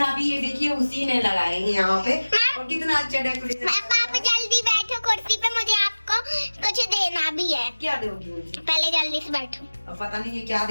भी ये देखिए उसी ने लगाए हैं यहाँ पे। और कितना अच्छा डेकोरेशन। पापा जल्दी बैठो कुर्सी पे, मुझे आपको कुछ देना भी है। क्या दोगी मुझे? पहले जल्दी से बैठो। अब पता नहीं ये क्या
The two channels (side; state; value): both; inverted; correlation -1.00